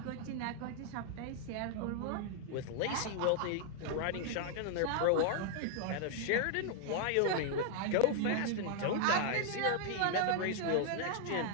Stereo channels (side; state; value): both; different; correlation 0.00